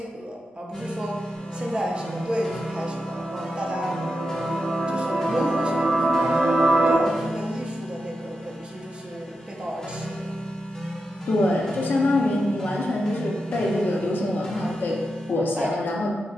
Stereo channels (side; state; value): both; normal; correlation 0.88